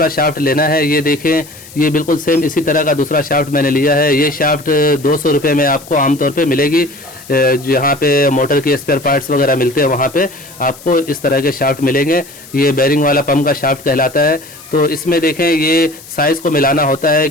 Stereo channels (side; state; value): left; noise; hiss, 19 dB below the sound